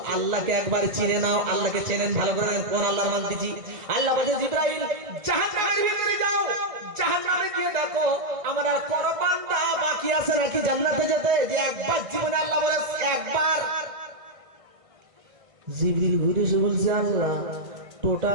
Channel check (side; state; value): left; late; 1.5 ms